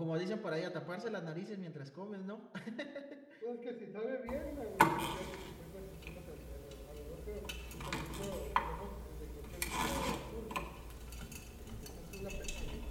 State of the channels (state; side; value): identical; both; correlation 1.00